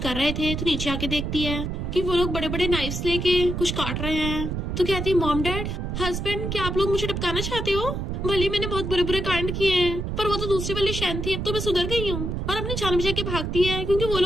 रहे थे, तो नीचे आके देखती है कि वो लोग बड़े बड़े नाइफ्स लेके कुछ काट रहे हैं। तो कहती है, मॉम डैड हस्बैंड, क्या आप लोग मुझे टपकाना चाहते हो? भले मैंने बहुत बुरे बुरे कांड किए हैं, पर वो तो दूसरी वाली शैन थी, अब तो मैं सुधर गई हूँ। और अपनी जान बचा के भागती है, क्योंकि वो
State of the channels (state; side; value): noise; right; rumble, 3 dB below the sound